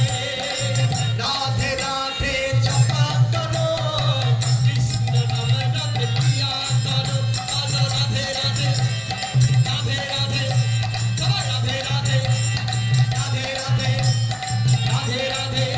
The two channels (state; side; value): identical; both; correlation 1.00